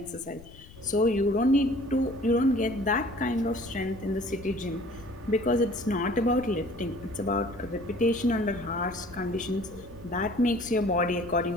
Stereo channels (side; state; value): left; noise; rumble, 20 dB below the sound